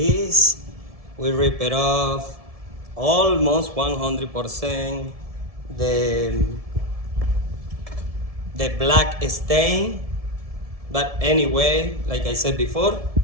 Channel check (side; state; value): left; late; 1.7 ms